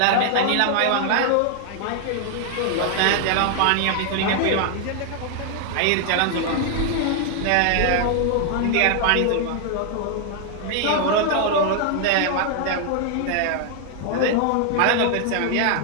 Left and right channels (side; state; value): both; different; correlation 0.00